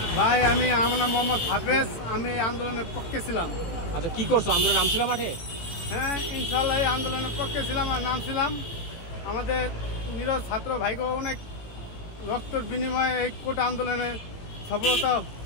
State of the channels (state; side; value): late; right; 18 ms